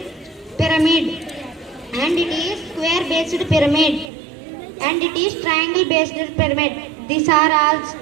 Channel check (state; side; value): drops out; left; at 4.1 s